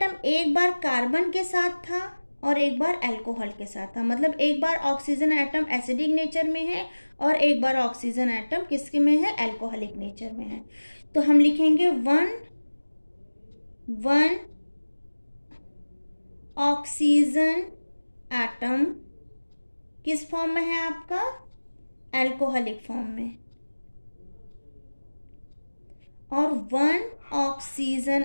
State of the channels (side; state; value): both; inverted; correlation -1.00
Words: एक बार कार्बन के साथ था और एक बार अल्कोहल के साथ था, मतलब एक बार ऑक्सीजन एटम एसिडिक नेचर में है और एक बार ऑक्सीजन एटम किसके में है? अल्कोहलिक नेचर में है। तो हम लिखेंगे 1 ऑक्सीजन एटम किस फॉर्म में है आपका? अल्कोहलिक फॉर्म में, और 1 ऑक्सीजन